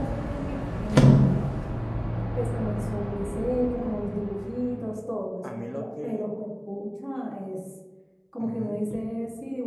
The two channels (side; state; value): both; identical; correlation 1.00